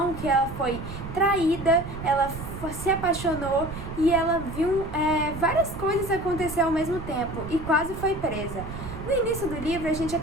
que ela foi traída, ela se apaixonou e ela viu várias coisas acontecer ao mesmo tempo e quase foi presa. No início do livro, a gente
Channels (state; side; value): noise; right; rumble, 10 dB below the sound